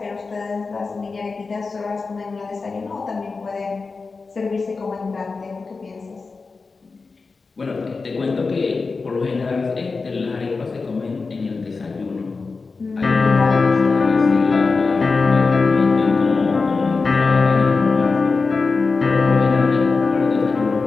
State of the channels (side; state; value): right; quieter; 4.3 dB